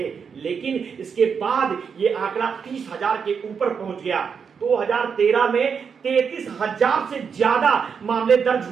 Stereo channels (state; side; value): quieter; left; 6.4 dB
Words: लेकिन इसके बाद ये आंकड़ा 30,000 के ऊपर पहुंच गया। 2013 में 33,000 से ज्यादा मामले दर्ज